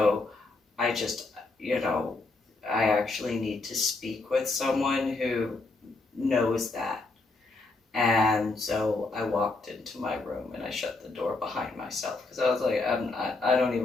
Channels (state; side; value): quieter; right; 3.5 dB